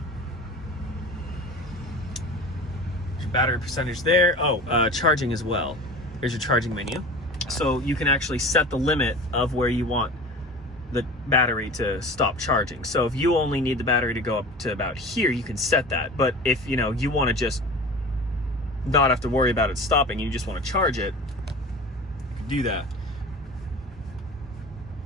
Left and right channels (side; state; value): both; normal; correlation 0.36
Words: battery percentage there. Oh, charging as well. Here's your charging menu. So you can actually set the limit of where you want the battery to stop charging. So if you only need the battery to go up to about here, you can set that. But if you want to just not have to worry about it stopping, you just want to charge it, you can do that.